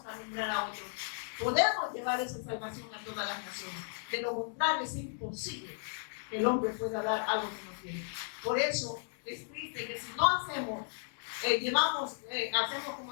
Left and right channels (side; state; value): right; silent; 55 dB below the other